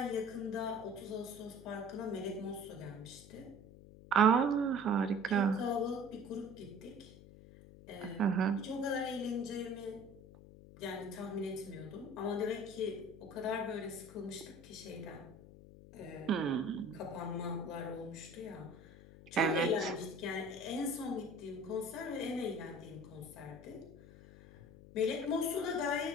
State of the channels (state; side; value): noise; left; hum, 18 dB below the sound